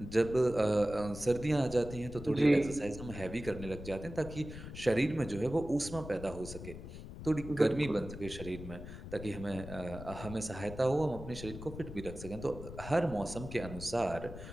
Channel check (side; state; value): left; noise; rumble, 11 dB below the sound